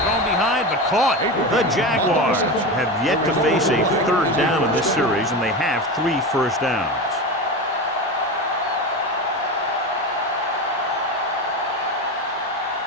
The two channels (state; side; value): normal; both; correlation 0.22